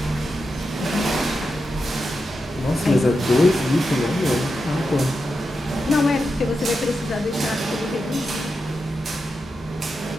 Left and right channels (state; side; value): normal; both; correlation 0.88